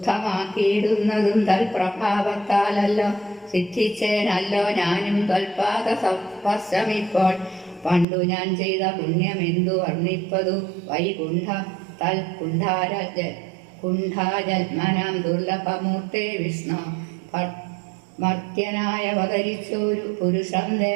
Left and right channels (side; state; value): left; drops out; at 8.1 s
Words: തൽപ്രഭാവത്താലല്ലോ സിദ്ധിച്ചേനല്ലോ ഞാനും ത്വൽപാദ സ്പർശമിപ്പോൾ. പണ്ടു ഞാൻ ചെയ്ത പുണ്യമെന്തു വർണ്ണിപ്പതു വൈകുണ്ഠ തൽ കുണ്ഠാജന്മനാം ദുർലഭമൂർത്തേ വിഷ്ണു. മർത്യനായ അവതരിച്ചൊരു പുരുഷം